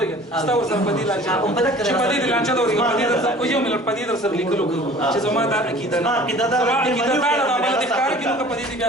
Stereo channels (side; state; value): both; normal; correlation 0.47